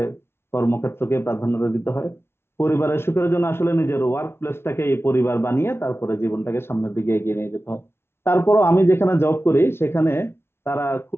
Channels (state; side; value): late; right; 0.12 ms